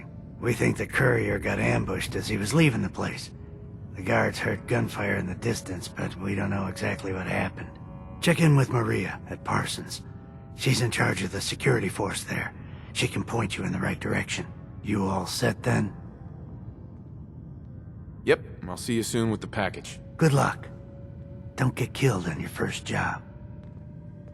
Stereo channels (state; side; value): identical; both; correlation 1.00